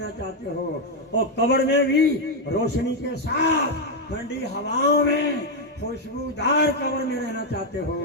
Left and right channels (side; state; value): both; normal; correlation 0.02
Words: چاہتے ہو اور قبر میں بھی روشنی کے ساتھ ٹھنڈی ہواؤں میں خوشبودار قبر میں رہنا چاہتے